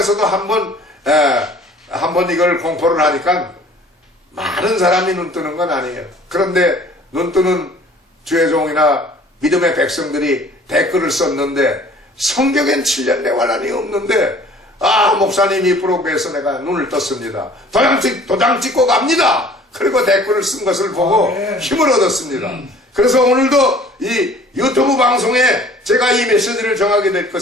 한번 이걸 공포를 하니까 많은 사람이 눈 뜨는 건 아니에요. 그런데 눈 뜨는 주의 종이나 믿음의 백성들이 댓글을 썼는데 성경엔 7년 대환란이 없는데 목사님이 블로그에서 내가 눈을 떴습니다. 도장 찍고 갑니다. 그리고 댓글을 쓴 것을 보고 네. 힘을 얻었습니다. 그래서 오늘도 이 유튜브 방송에 제가 이 메시지를 정하게 될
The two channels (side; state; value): both; normal; correlation 0.51